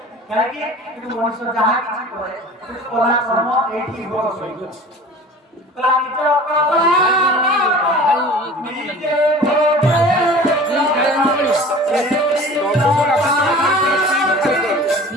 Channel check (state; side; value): normal; both; correlation 0.42